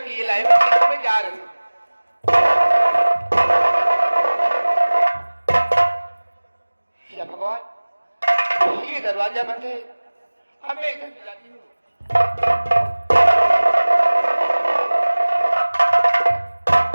की ये लाए मैं जा रही हूँ। या भगवान, ये दरवाजा बंद है, अब मैं इधर जाती हूँ।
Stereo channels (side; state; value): both; inverted; correlation -1.00